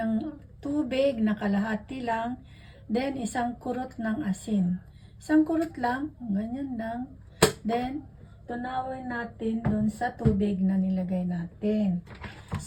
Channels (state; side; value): identical; both; correlation 1.00